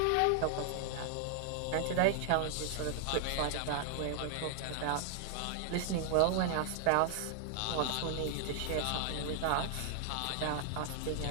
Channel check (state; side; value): different; both; correlation 0.00